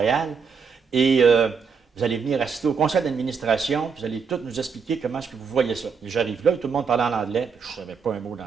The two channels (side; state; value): left; quieter; 5.8 dB